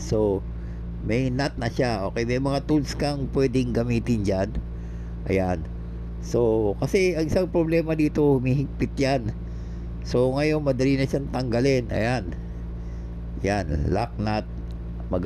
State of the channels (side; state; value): both; identical; correlation 1.00